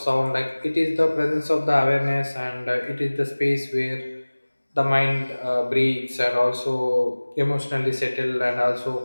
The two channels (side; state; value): both; inverted; correlation -1.00